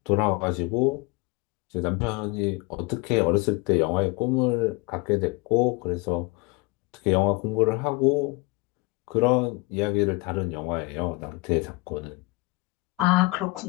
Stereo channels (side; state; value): right; quieter; 25.8 dB